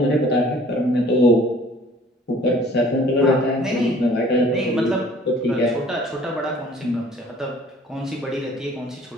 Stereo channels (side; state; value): both; normal; correlation 0.53